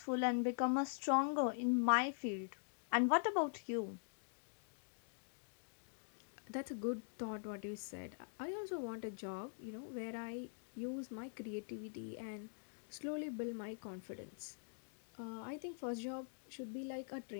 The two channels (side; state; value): right; silent; digital silence